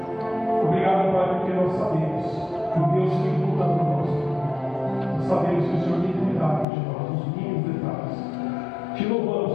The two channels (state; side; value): drops out; right; at 6.7 s